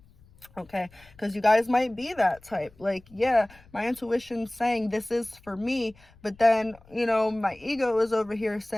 Okay, because you guys might be that type, like, yeah, my intuition's saying this is for me, but then, you know, my ego is over here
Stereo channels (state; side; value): noise; left; rumble, 27 dB below the sound